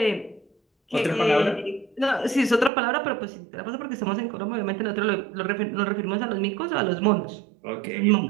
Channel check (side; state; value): left; drops out; at 2.7 s